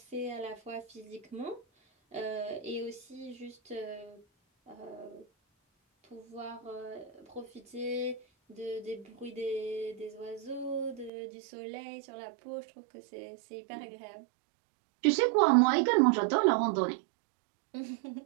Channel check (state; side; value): drops out; left; at 11.1 s